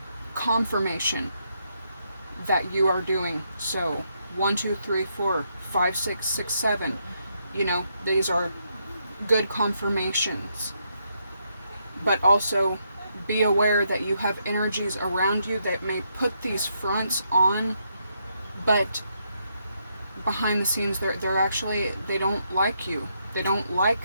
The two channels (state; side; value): inverted; both; correlation -0.78